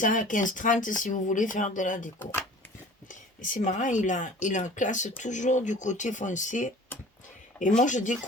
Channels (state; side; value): normal; both; correlation 0.45